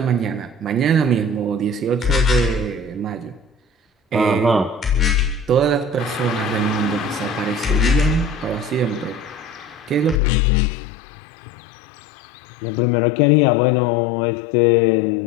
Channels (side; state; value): right; drops out; at 10.2 s